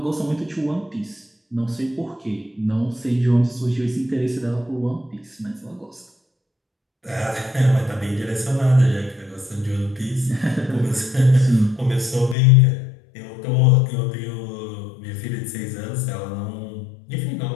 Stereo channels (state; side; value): drops out; right; at 12.4 s